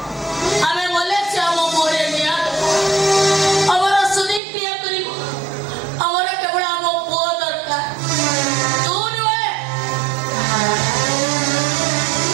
ଆମେ ଗଲେ ସେ ଆମ ପୁଅରେ ନିଆଁ ଆମର ସୁଦୀପ କ୍ରିୟା କରିବ ଆମର କେବଳ ଆମ ପୁଅ ଦରକାର ତୁ ନୁହେଁ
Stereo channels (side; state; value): left; drops out; at 4.4 s